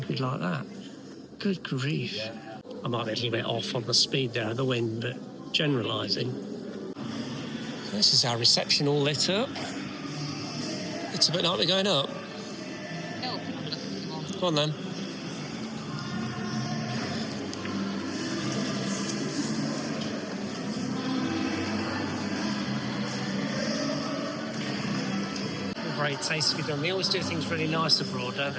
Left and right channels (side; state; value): both; identical; correlation 1.00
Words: like that? Good grief. Yeah. I might be a little bit off on the speed there of the wind, but generalising. This is our reception all lit up. It's a bit like we're going up. Go on then. Very tastefully done. They always do things really nice abroad, don't they?